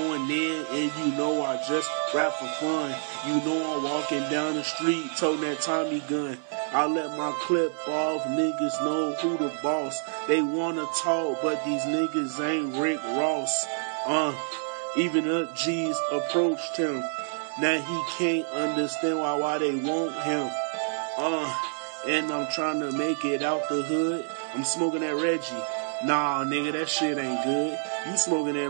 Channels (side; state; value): left; silent; 60 dB below the other